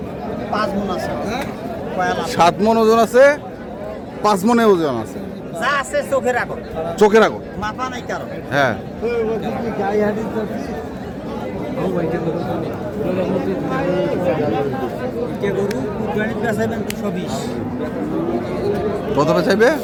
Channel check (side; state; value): both; identical; correlation 1.00